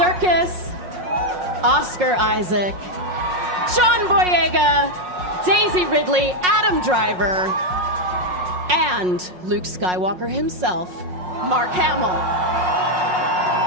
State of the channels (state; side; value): late; left; 5.5 ms